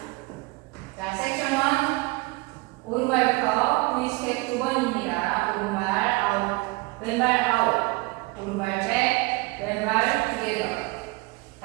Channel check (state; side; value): quieter; left; 24.4 dB